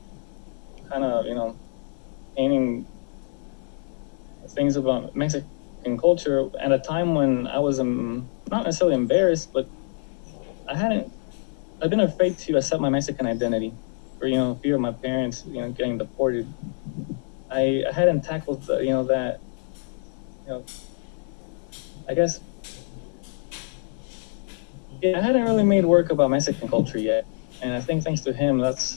Kind of, painting things about Mexican culture at a time when I was not necessarily embarrassed, but I hadn't. I've been afraid to accept my Mexican identity, for fear of my parents, getting deported. I hadn't tackled, that. You know, I guess, yeah, I hadn't really made work about Mexican culture yet, and I think thanks to him, that's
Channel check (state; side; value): silent; right; 61 dB below the other